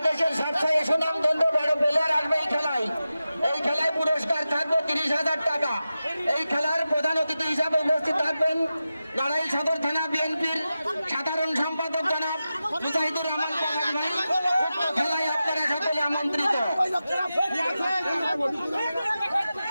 সবচেয়ে সুনামধন্য বড় প্লেয়ার আসবে এই খেলায়। এই খেলায় পুরস্কার থাকবে 30,000 টাকা। এই খেলার প্রধান অতিথি হিসাবে উপস্থিত থাকবেন নড়াইল সদর থানা বিএনপির সাধারণ সম্পাদক জনাব মুজাহিদুর রহমান প্রধান ভাই। উক্ত খেলায় আপনারা সকলে আমন্ত্রিত।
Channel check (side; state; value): both; inverted; correlation -0.93